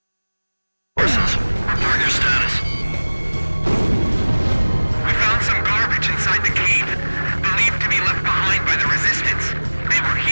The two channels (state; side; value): inverted; both; correlation -1.00